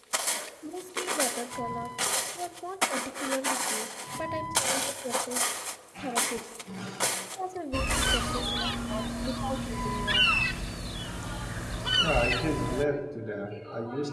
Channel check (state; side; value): identical; both; correlation 1.00